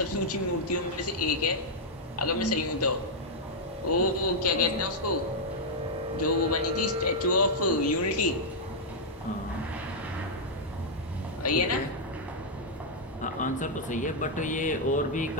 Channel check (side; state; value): both; normal; correlation -0.05